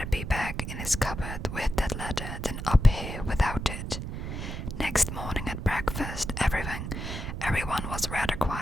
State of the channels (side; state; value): right; noise; rumble, 6 dB below the sound